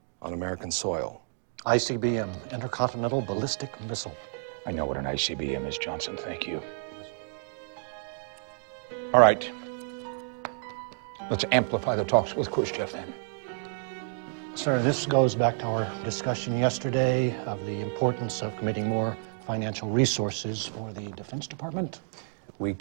on American soil. ICBM, Intercontinental Ballistic Missile. I know what an ICBM is, Johnson. Thank you. All right. Let's amplify the talks with Khrushchev then. Sir, this goes back to our discussion yesterday of the importance of committing more financial resources for the Defense Department. We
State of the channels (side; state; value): left; silent; digital silence